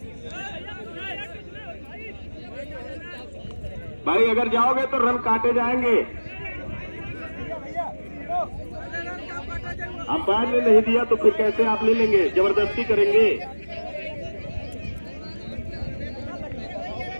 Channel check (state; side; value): inverted; both; correlation -1.00